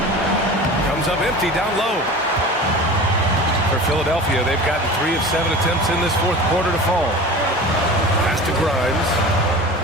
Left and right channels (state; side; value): normal; both; correlation 0.36